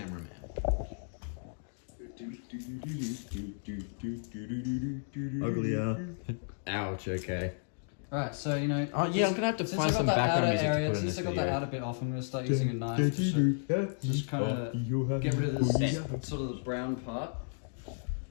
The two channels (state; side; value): silent; right; digital silence